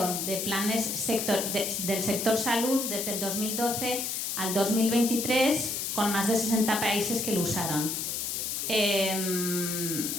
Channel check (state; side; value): noise; left; hiss, 2 dB below the sound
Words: de planes del sector salud desde el 2012 al 2023, con más de 60 países que lo usaron.